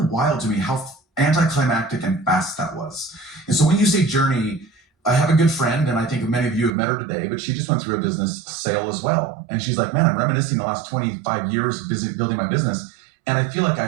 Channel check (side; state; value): left; drops out; at 6.7 s